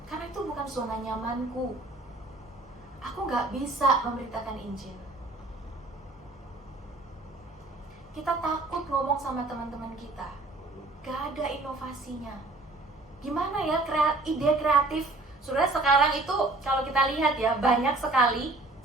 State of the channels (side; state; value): left; quieter; 3.0 dB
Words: karena itu bukan zona nyamanku. Aku gak bisa memberitakan Injil. Kita takut ngomong sama teman-teman kita, gak ada inovasinya. Gimana ya ide kreatif? Saudara, sekarang itu kalau kita lihat ya, banyak sekali.